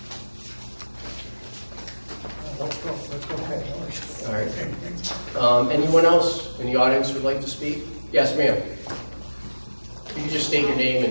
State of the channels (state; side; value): inverted; both; correlation -1.00